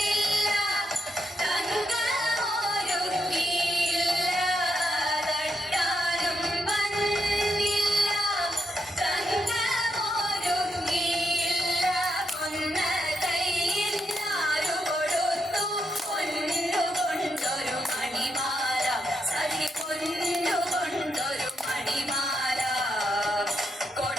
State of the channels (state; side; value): normal; both; correlation 0.81